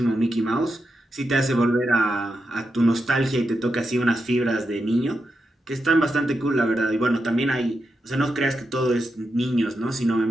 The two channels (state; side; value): normal; both; correlation 0.87